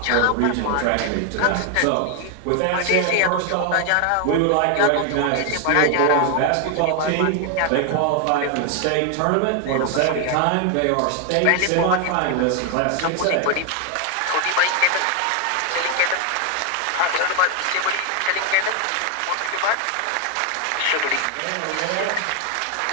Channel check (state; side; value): different; both; correlation 0.01